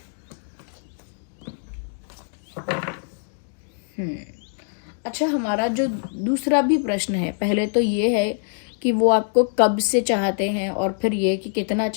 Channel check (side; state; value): right; silent; digital silence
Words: अच्छा, हमारा जो दूसरा भी प्रश्न है, पहले तो ये है कि वो आपको कब से चाहते हैं, और फिर ये कि कितना